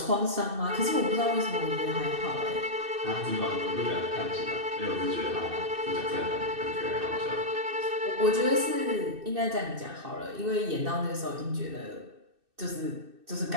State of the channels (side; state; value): left; late; 2.6 ms